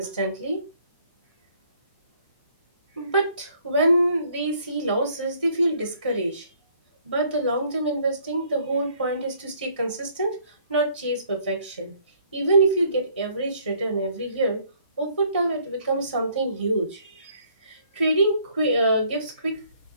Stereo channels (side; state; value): both; inverted; correlation -0.63